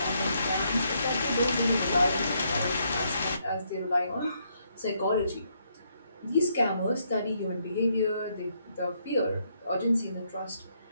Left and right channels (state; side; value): inverted; both; correlation -0.74